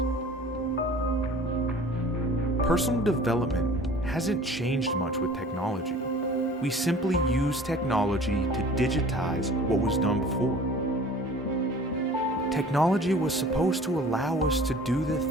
Personal development hasn't changed much with technology. We simply use technology to digitize what was done before. Technology was supposed to allow us to do the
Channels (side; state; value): both; normal; correlation 0.46